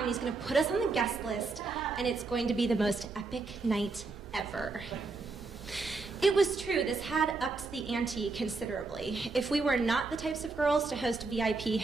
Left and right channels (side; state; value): left; quieter; 3.9 dB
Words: and he's going to put us on the guest list, and it's going to be the most epic night ever. It was true, this had upped the ante considerably. If we were not the types of girls to host VIP